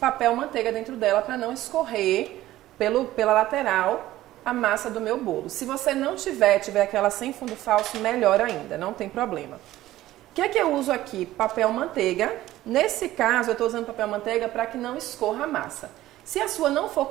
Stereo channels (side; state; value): left; quieter; 15.2 dB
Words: manteiga dentro dela para não escorrer pela lateral a massa do meu bolo. Se você não tiver aquela sem fundo falso, melhor ainda, não tem problema. O que é que eu uso aqui? Papel manteiga. Nesse caso, eu estou usando papel manteiga para que não escorra a massa. Se a sua não for